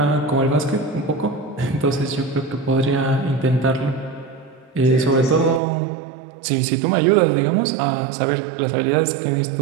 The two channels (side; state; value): left; drops out; at 5.6 s